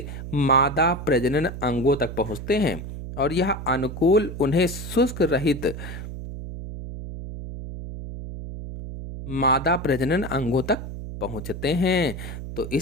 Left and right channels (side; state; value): right; noise; hum, 9 dB below the sound